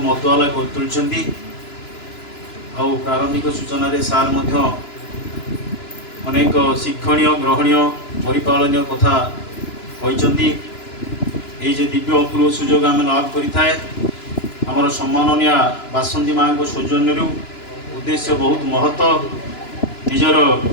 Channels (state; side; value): late; right; 2.9 ms